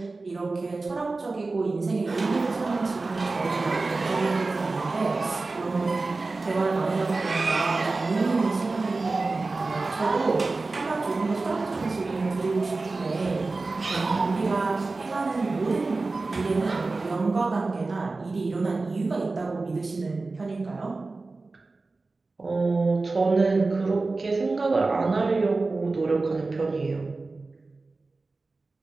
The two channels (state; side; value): quieter; left; 3.6 dB